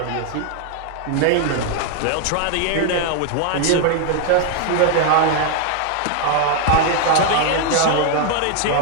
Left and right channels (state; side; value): different; both; correlation 0.00